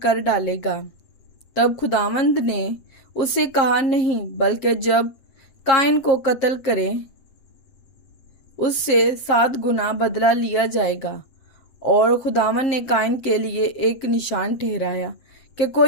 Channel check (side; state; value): right; late; 7.4 ms